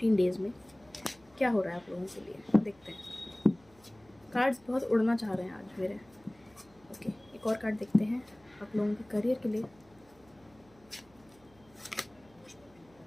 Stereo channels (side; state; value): right; noise; hum, 29 dB below the sound